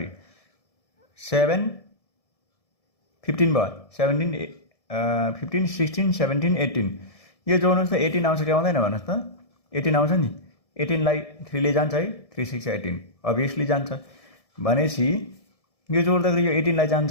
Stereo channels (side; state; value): right; late; 1.7 ms